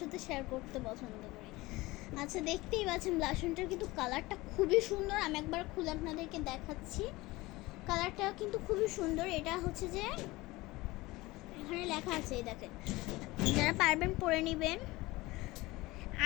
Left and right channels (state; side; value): quieter; right; 20.5 dB